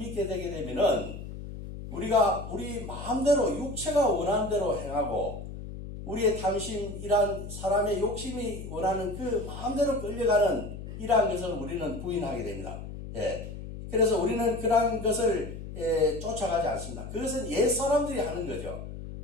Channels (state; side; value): noise; left; hum, 10 dB below the sound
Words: 되게 되면은 우리가 우리 마음대로 육체가 원하는 대로 행하고 우리의 탐심, 이러한 사람의 욕심이 원하는 그 마음대로 끌려가는 이러한 것을 우리는 부인하게 됩니다. 그래서 우리는 그러한 것을 쫓아가지 않습니다. 그것은 옛 사람들이 하는 거죠.